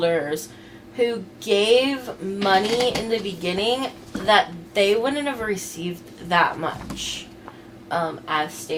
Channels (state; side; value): identical; both; correlation 1.00